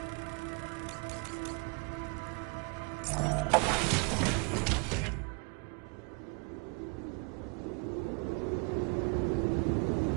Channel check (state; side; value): quieter; left; 33.5 dB